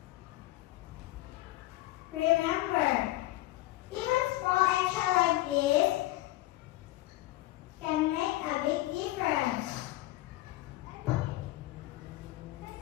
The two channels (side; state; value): right; quieter; 17.2 dB